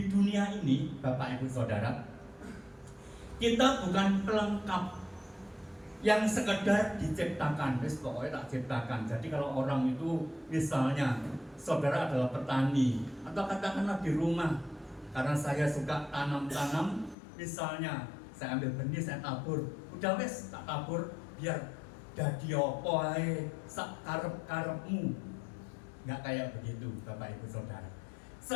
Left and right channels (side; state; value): right; drops out; at 17.2 s